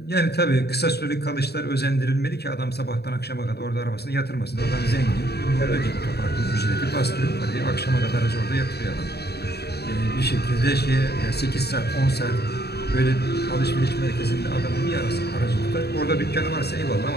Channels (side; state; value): right; late; 0.47 ms